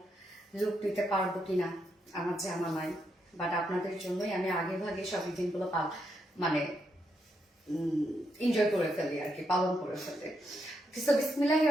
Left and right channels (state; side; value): normal; both; correlation 0.80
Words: লুক নিতে পারবো কিনা, আমার জানা নাই। বাট আপনাদের জন্যই আমি আগে ভাগে সব দিনগুলো মানে এনজয় করে ফেলি আর কি, পালন করে ফেলি। সো বিসমিল্লাহির